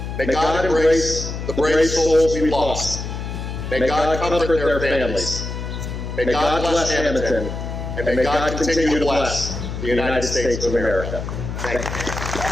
May God embrace the brave souls we've lost. May God comfort their families. May God bless Hammonton, and may God continue to bless the United States of America. Thank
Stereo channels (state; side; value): noise; left; hum, 6 dB below the sound